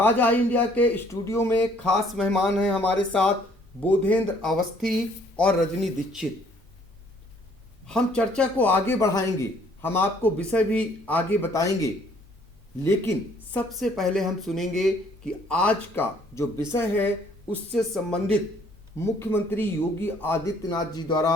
आई इंडिया के स्टूडियो में खास मेहमान हैं हमारे साथ बोधेंद्र अवस्थी और रजनी दीक्षित। हम चर्चा को आगे बढ़ाएंगे, हम आपको विषय भी आगे बताएंगे, लेकिन सबसे पहले हम सुनेंगे कि आज का जो विषय है उससे संबंधित मुख्यमंत्री योगी आदित्यनाथ जी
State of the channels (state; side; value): normal; both; correlation 0.61